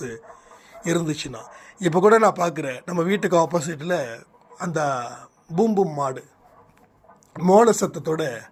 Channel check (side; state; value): both; identical; correlation 1.00